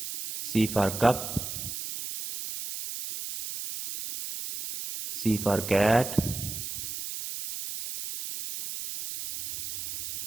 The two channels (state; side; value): noise; right; hiss, 7 dB below the sound